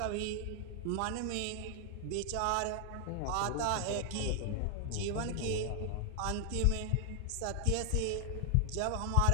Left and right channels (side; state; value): both; different; correlation 0.00